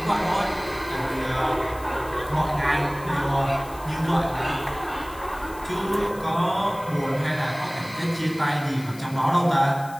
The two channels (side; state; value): left; noise; hiss, 20 dB below the sound